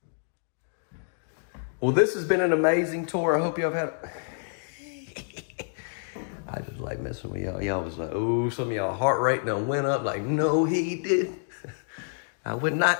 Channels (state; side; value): silent; right; digital silence